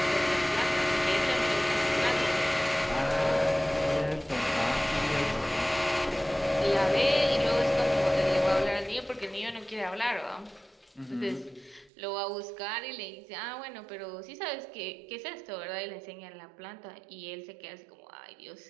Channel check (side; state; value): left; drops out; at 11.9 s